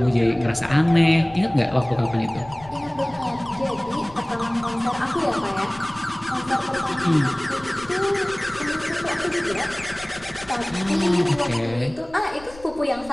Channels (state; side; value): noise; left; rumble, 20 dB below the sound